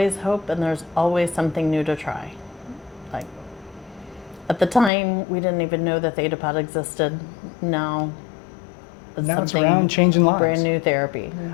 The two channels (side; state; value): right; drops out; at 4.9 s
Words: hope and there's always something new to try. Like at the time, we didn't even know that Theta Pod existed. Now It's around, changing lives. Brand new therapy.